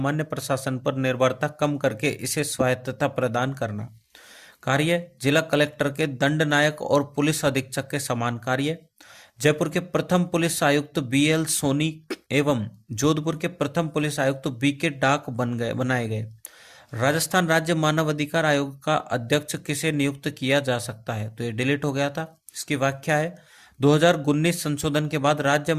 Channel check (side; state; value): both; identical; correlation 1.00